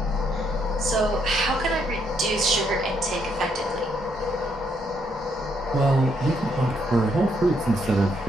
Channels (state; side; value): normal; both; correlation 0.74